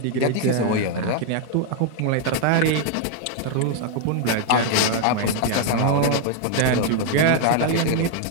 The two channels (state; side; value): different; both; correlation 0.00